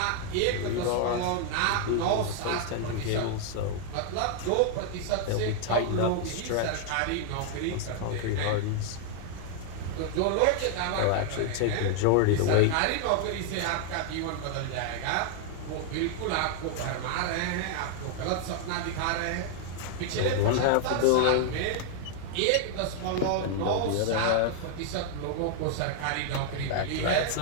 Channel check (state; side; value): different; both; correlation 0.00